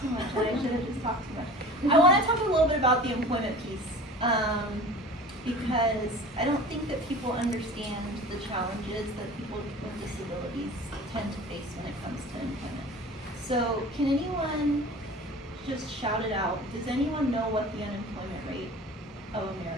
much, and I should have just talked too much. I want to talk a little bit about the employment piece, because I don't think that people understand the challenges that people with disabilities tend to face when it comes to employment. So, can anyone just shout it out? Does anyone know what the unemployment rate of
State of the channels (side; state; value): both; normal; correlation 0.40